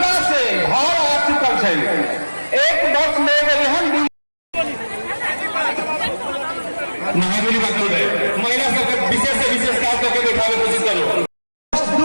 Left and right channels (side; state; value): both; inverted; correlation -1.00